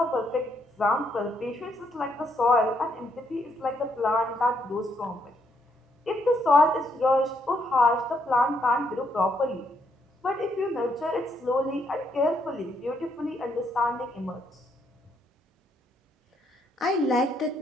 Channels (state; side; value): normal; both; correlation 0.74